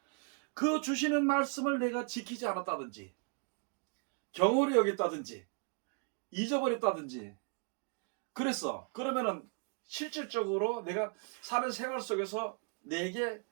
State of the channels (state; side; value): quieter; left; 39.8 dB